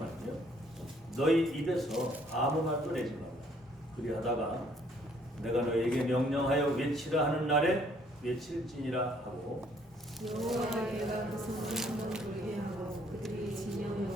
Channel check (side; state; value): both; normal; correlation 0.63